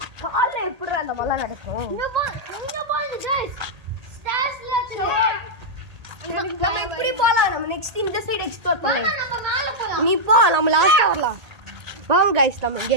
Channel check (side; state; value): left; late; 1.8 ms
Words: கால்ல எப்படி அந்த மலை நடக்கும்? இங்க பாருங்க गाइस. ஸ்டேர்ஸ்ல இருக்கு. நம்ம இப்படி போலாம். நம்ம நெக்ஸ்ட் இந்த சைடு எக்ஸ்ப்ளோர் பண்ணலாம். நம்ம மேல போலாம். நீ போ நம்ம லாஸ்டா வரலாம். வாங்க गाइस நம்ம இங்க